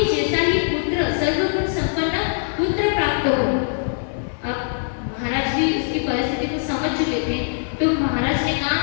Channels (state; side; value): silent; right; 63 dB below the other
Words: जैसा ही पुत्र, सर्वगुण संपन्न पुत्र प्राप्त हो। अब महाराज भी उसकी परिस्थिति को समझ चुके थे, तो महाराज ने कहा,